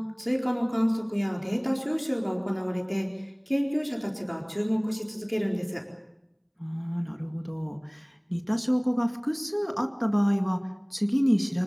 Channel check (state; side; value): identical; both; correlation 1.00